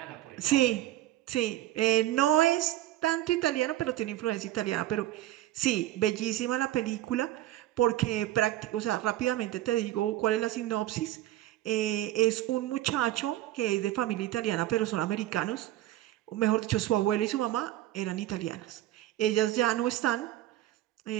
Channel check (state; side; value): quieter; left; 14.3 dB